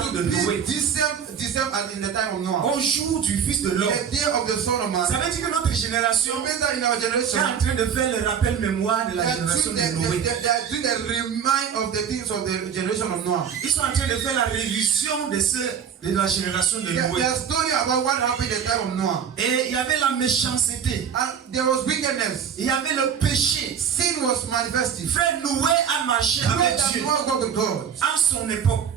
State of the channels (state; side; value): quieter; left; 7.7 dB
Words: de will Noé. be the same as in the time of Noah. Au jour du Fils de l'homme. The day of the Son of Man. Ça veut dire que notre génération So means that in our est generation, en train de faire le rappel mémoire de they la are génération doing de Noé. the remind of the things of the generation of Noah. Ils sont en train de faire la révision de la génération de They Noé. are story about what happened in the time of Noah. Et il y avait la méchanceté. And there was wickedness. Il y avait le péché. Sin was manifested. Frère Noé a marché avec That Dieu Noah go with God en son époque.